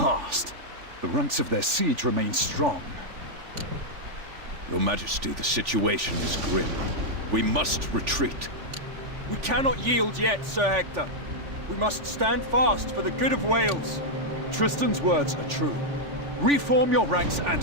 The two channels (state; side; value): late; left; 3.4 ms